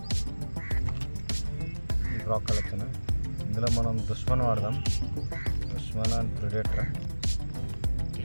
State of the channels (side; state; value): both; inverted; correlation -1.00